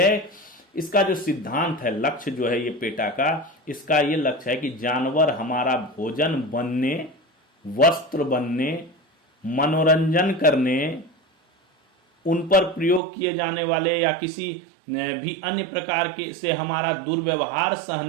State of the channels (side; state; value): left; drops out; at 13.0 s